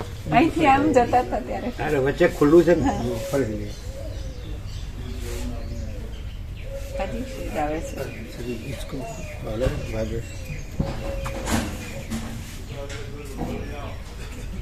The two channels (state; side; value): identical; both; correlation 1.00